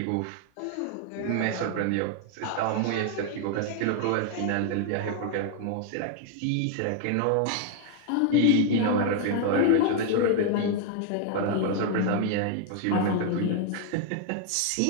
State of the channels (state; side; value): different; both; correlation 0.00